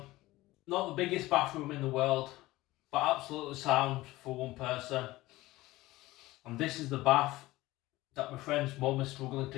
Not the biggest bathroom in the world, but absolutely sound for one person. And this is the bath that my friend's mum is struggling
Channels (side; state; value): right; quieter; 18.3 dB